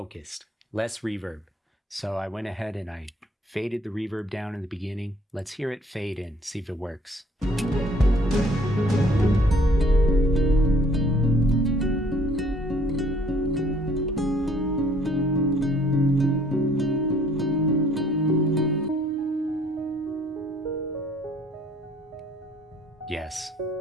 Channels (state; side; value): normal; both; correlation 0.59